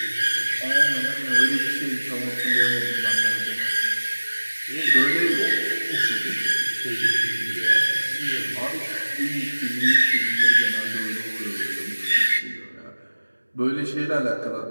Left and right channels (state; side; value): inverted; both; correlation -1.00